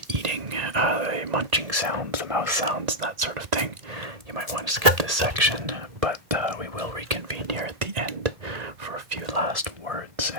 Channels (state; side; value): late; left; 1.7 ms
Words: eating, the munching sounds, the mouth sounds, that sort of thing, you might want to skip this section, but we will reconvene here at the end for a few last words,